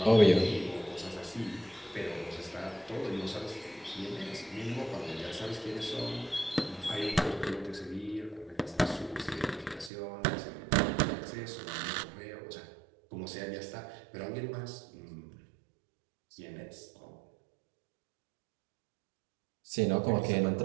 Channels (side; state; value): left; drops out; at 9.9 s